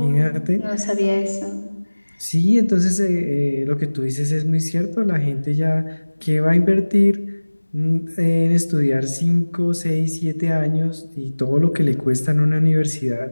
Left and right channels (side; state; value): both; inverted; correlation -1.00